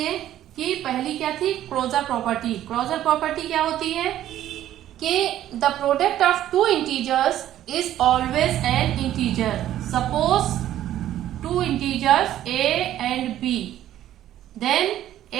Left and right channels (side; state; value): left; quieter; 12.5 dB